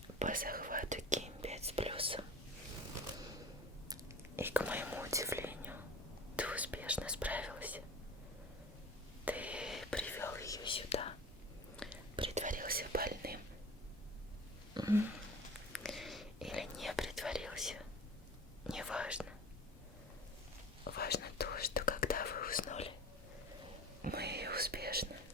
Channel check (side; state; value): both; normal; correlation 0.38